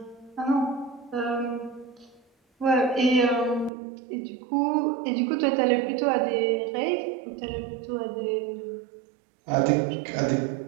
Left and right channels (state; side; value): drops out; left; at 3.7 s